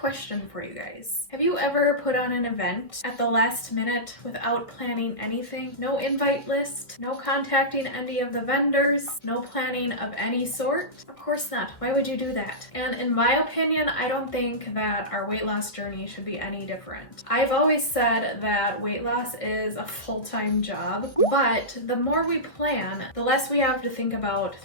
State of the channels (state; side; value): late; right; 1.8 ms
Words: for you guys. Have you ever put on an event at the last minute without planning anything? No invite list, no contacting any of the vendors, no planning of any sort? Of course not. Why would you do that? And in my opinion, I don't think that our weight loss journey should be any different. I've always said that weight loss is a full-time job, but the more we plan, the less we have to think about